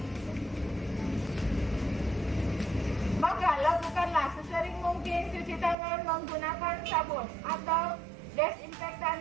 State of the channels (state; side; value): drops out; left; at 5.8 s